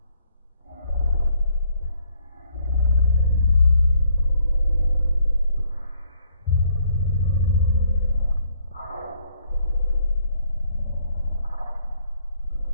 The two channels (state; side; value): inverted; both; correlation -0.66